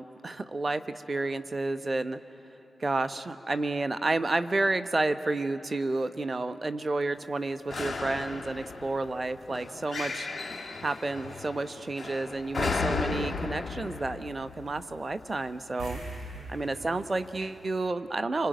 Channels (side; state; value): both; normal; correlation 0.92